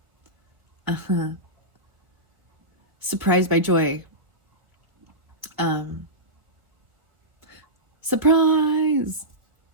Surprised by joy. Surprise!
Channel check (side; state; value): left; late; 1.5 ms